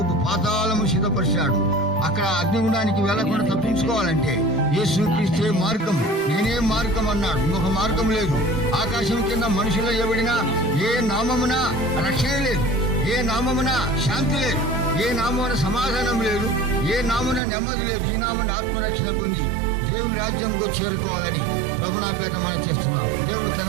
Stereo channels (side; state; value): left; drops out; at 17.4 s